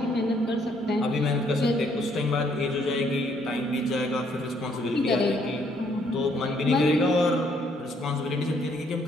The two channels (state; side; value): normal; both; correlation 0.68